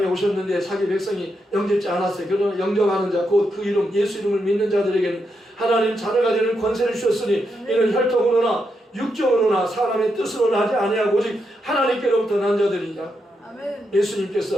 오셨는데 자기 백성이 영접지 않았어요. 그러나 영접하는 자, 곧 그 이름, 예수 이름을 믿는 자들에게는 하나님 자녀가 되는 권세를 주셨으니 이는 혈통으로나 육정으로나 사람의 뜻으로 나지 아니하고 오직 하나님께로부터 난 자들이니라.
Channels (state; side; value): normal; both; correlation 0.83